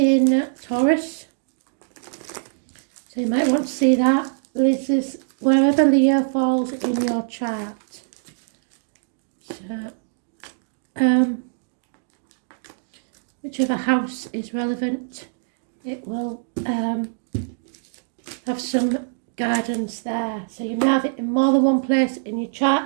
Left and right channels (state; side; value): silent; left; digital silence